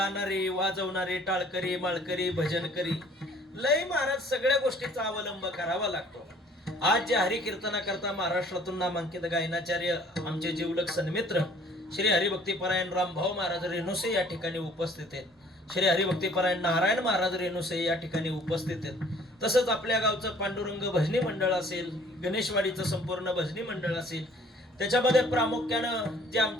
वाजवणारे, टाळकरी, माळकरी, भजनकरी, लय महाराज सगळ्या गोष्टीचा अवलंब करावा लागतो. आज जे हरिकीर्तनाकरता महाराष्ट्रातून नामांकित गायनाचार्य आमचे जीवलग सन्मित्र श्री हरिभक्तीपरायण रामभाऊ महाराज रेणुसे या ठिकाणी उपस्थित आहेत. श्री हरिभक्तीपरायण नारायण महाराज रेणुसे या ठिकाणी उपस्थित आहेत. तसंच आपल्या गावचं पांडुरंग भजनी मंडळ असेल, गणेशवाडीचं संपूर्ण भजनी मंडळ असेल, त्याच्यामध्ये प्रामुख्यानं जे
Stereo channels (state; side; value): normal; both; correlation 0.56